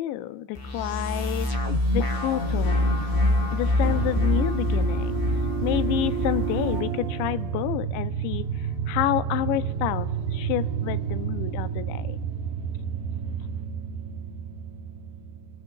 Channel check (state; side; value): late; right; 14 ms